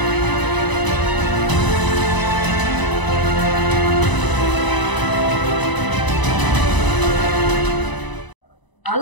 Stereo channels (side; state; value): right; late; 1.0 ms